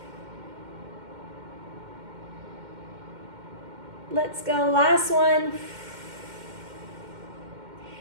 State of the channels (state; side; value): late; left; 2.1 ms